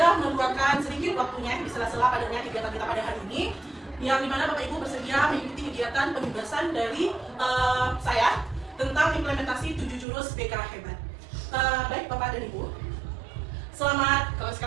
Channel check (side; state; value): left; drops out; at 10.1 s